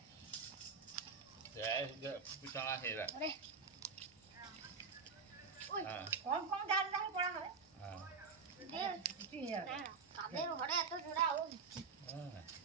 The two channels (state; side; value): quieter; left; 5.1 dB